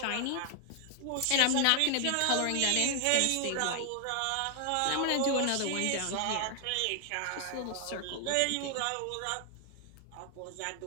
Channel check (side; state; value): both; different; correlation 0.00